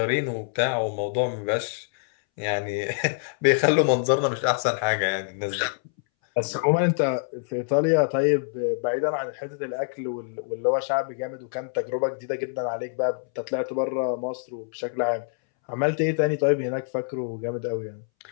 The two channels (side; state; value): right; silent; 61 dB below the other